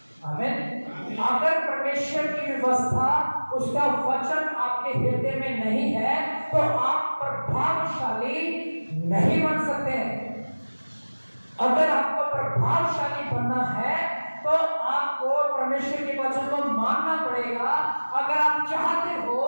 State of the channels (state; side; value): inverted; both; correlation -1.00